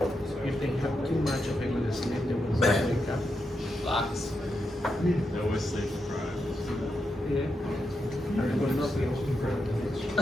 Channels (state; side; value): normal; both; correlation 0.85